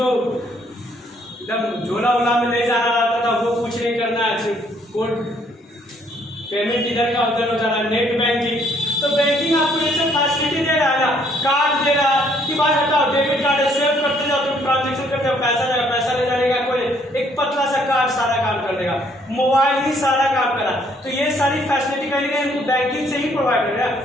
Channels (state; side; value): normal; both; correlation 0.65